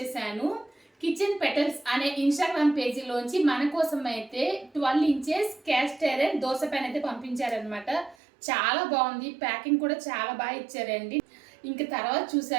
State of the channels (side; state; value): left; drops out; at 8.2 s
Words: కిచెన్ పెటల్స్ అనే ఇన్స్టాగ్రామ్ పేజీలోంచి మన కోసం అయితే 12 inches cast iron dosa pan అయితే పంపించారనమాట. చాలా బాగుంది, ప్యాకింగ్ కూడా చాలా బాగా ఇచ్చారండి. ఇంక తర్వాత